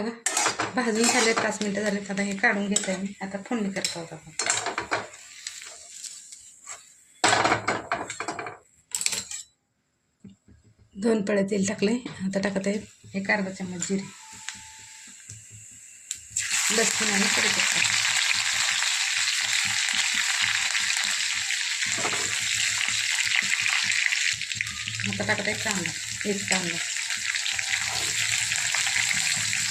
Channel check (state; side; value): identical; both; correlation 1.00